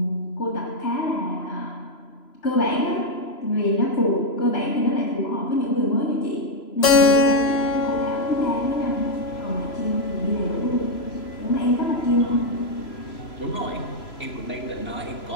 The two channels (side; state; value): right; late; 3.0 ms